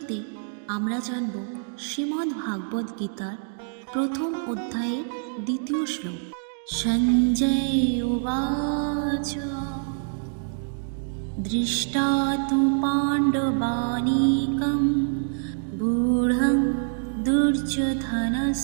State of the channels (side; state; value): left; silent; digital silence